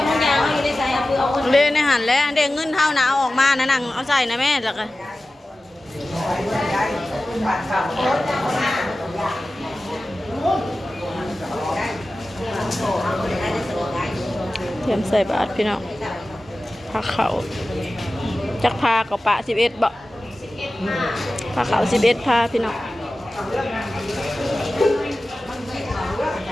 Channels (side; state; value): both; normal; correlation 0.95